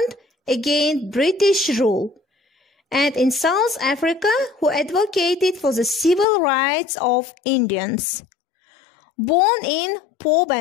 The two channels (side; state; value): right; drops out; at 6.2 s